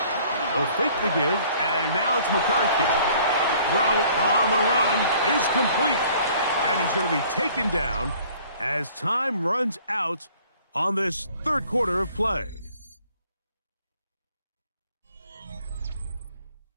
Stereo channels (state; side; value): inverted; both; correlation -0.55